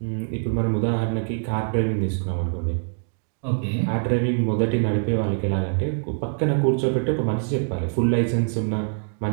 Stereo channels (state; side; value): silent; left; 63 dB below the other